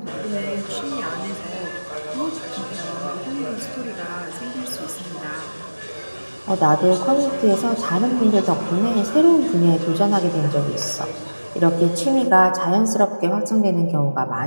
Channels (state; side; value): inverted; both; correlation -1.00